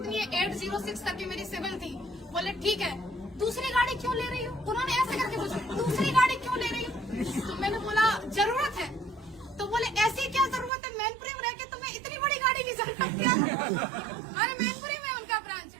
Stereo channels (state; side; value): drops out; left; at 10.7 s